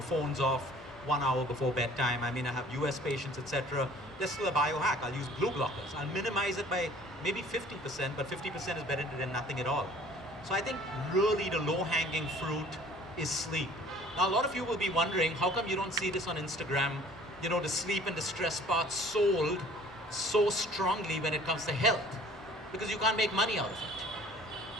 Phones off 1 hour before bedtime. I have US patients, etc. There's still a biohack. I'll use blue blockers. I'll minimize it by maybe 50%, but 50% is better than nothing at all. So I think really the low-hanging fruit is sleep. Now, a lot of you will be wondering, how come you don't see this on Instagram? The sleep and the stress part sold so strongly when it comes to health, because you can't make money out of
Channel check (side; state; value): both; normal; correlation 0.51